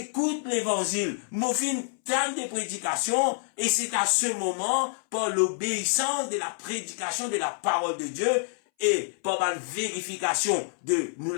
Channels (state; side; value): silent; right; 60 dB below the other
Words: l'évangile. Mon fin, tente des prédications. Et c'est à ce moment, par l'obéissance de la prédication de la parole de Dieu, et par la vérification de nous